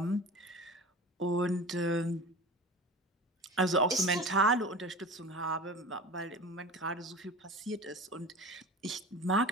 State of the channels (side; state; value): both; normal; correlation 0.33